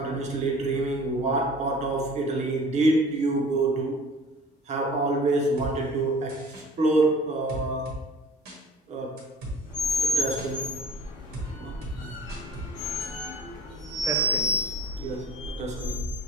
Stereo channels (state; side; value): normal; both; correlation 0.45